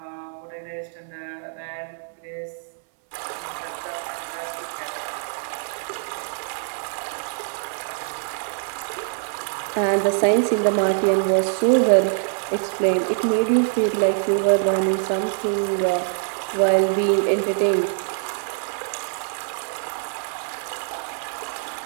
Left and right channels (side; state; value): left; silent; 63 dB below the other